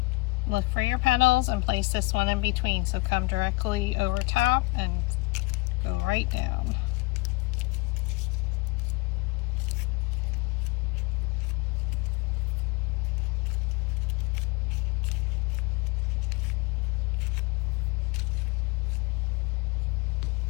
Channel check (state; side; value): quieter; right; 23.9 dB